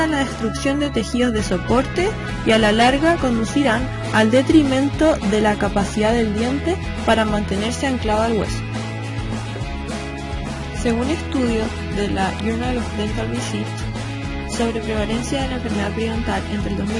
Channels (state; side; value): identical; both; correlation 1.00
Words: a la destrucción de tejidos de soporte y a la larga conducirán al detrimento de la capacidad del diente para mantenerse anclado al hueso. Según estudios de la Journal of Dental Research sobre prevalencia de la enfermedad periodontal entre el